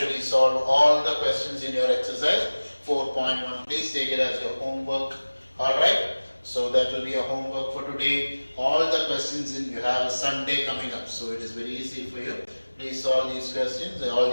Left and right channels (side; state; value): both; inverted; correlation -1.00